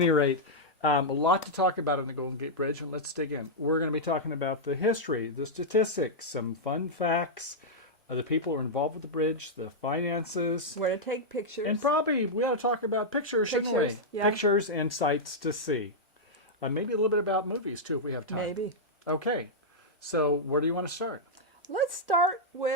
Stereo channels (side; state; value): both; normal; correlation -0.07